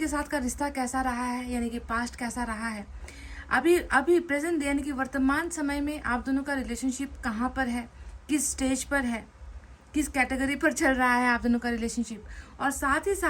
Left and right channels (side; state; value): both; identical; correlation 1.00